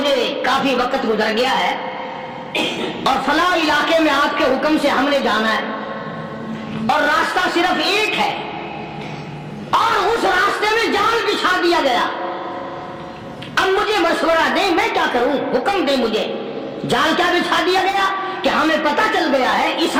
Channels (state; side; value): identical; both; correlation 1.00